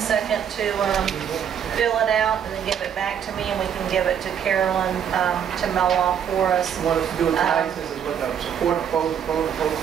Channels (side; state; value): left; quieter; 8.5 dB